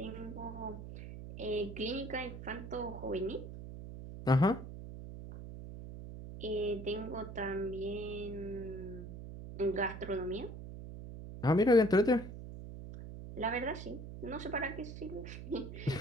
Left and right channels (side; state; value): right; noise; hum, 10 dB below the sound